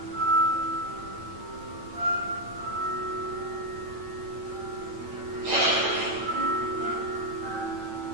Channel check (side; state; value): left; late; 9.0 ms